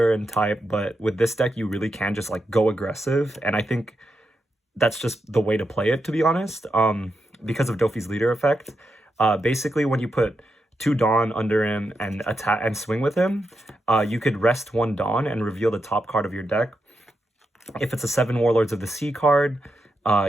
and type, but with this deck you really can just like go aggressive, and I think that's just the way to play it, to be honest, because of Doffy's leader effect. Basically, when you put 2 Dawn under him and attack and swing with him, you could rest 1 Dawn and reveal the top card of your deck. If it's a 7 Warlords of the Sea card,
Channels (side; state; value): both; normal; correlation 0.86